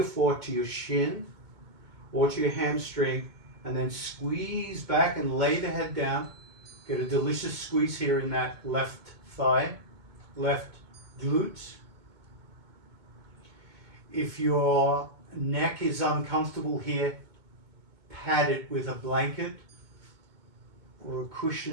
four to your shin or to your hamstring, and then squeeze back and lay the head down. Get a delicious squeeze here in that left thigh, left glute. If your neck is uncomfortable here, pad it with a blanket or a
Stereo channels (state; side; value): late; left; 2.2 ms